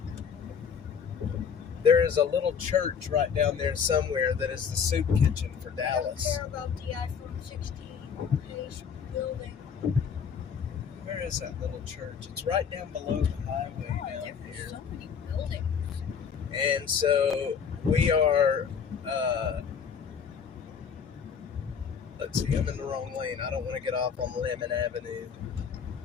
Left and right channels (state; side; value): quieter; right; 6.8 dB